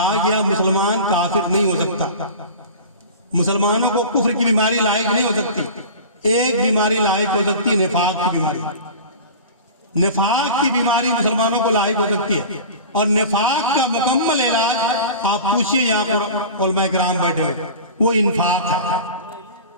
گیا مسلمان کافر نہیں ہو سکتا، مسلمانوں کو کفر کی بیماری لاحق نہیں ہو سکتی۔ ایک بیماری لاحق ہو سکتی ہے، نفاق کی بیماری۔ نفاق کی بیماری مسلمانوں کو لاحق ہو سکتی ہے، اور نفاق کا مکمل علاج آپ پوچھئے یہاں پر علماء کرام بیٹھے ہوئے، وہ انفاق ہے۔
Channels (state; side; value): inverted; both; correlation -0.35